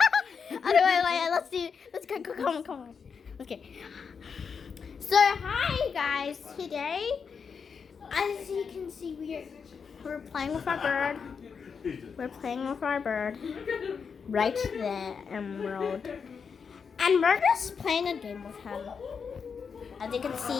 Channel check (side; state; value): right; quieter; 6.1 dB